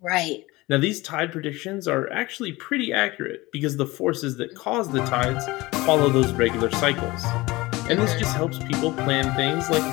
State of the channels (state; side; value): quieter; right; 21.0 dB